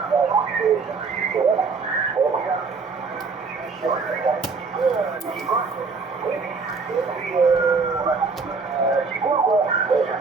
C'est cool quoi, ça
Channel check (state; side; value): quieter; left; 4.7 dB